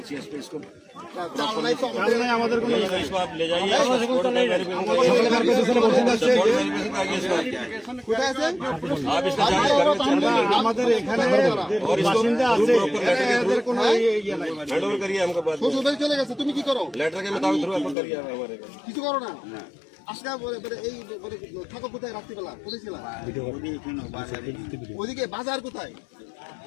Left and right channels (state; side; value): drops out; right; at 17.9 s